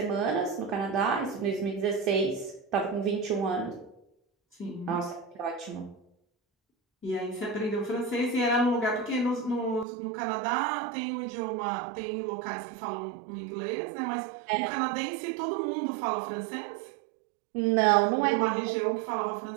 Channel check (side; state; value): left; drops out; at 9.9 s